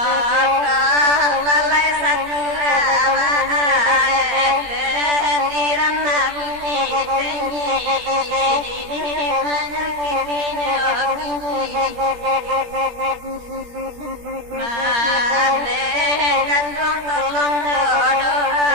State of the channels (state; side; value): late; left; 17 ms